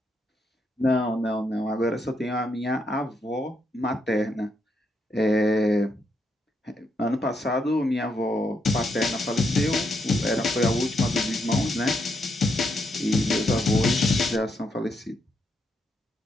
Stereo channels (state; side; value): normal; both; correlation 0.79